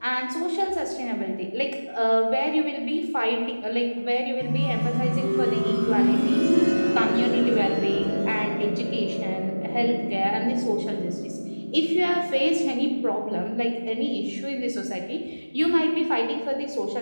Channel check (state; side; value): inverted; both; correlation -1.00